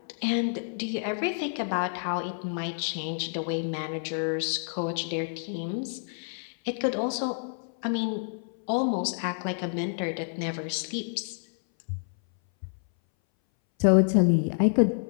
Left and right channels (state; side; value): silent; right; 59 dB below the other